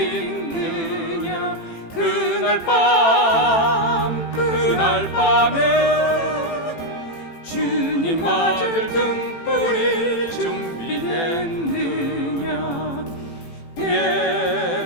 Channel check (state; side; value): late; right; 18 ms